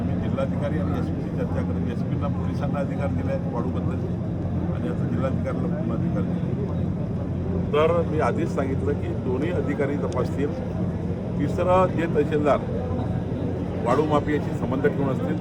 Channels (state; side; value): identical; both; correlation 1.00